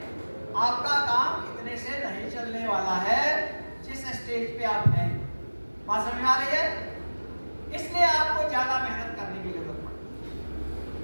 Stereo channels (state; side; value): inverted; both; correlation -1.00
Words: आपका काम इतने से नहीं चलने वाला है जिस स्टेज पे आप हैं। बात समझ में आ रही है? इसलिए आपको ज्यादा मेहनत करने की जरूरत पड़ती है,